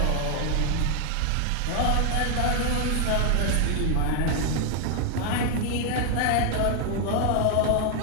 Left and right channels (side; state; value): both; different; correlation 0.00